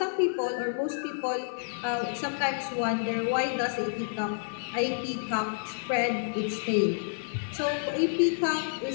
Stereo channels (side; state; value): right; silent; 57 dB below the other